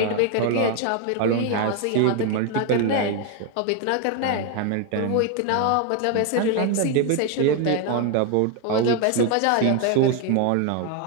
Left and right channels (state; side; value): different; both; correlation 0.01